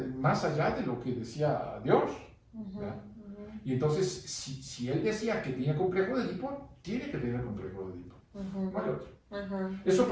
más allá de lo que decía Dios. Y entonces, si él decía que tenía complejo de Edipo, tiene que tener complejo de Edipo. No hay otro. Eso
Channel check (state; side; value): identical; both; correlation 1.00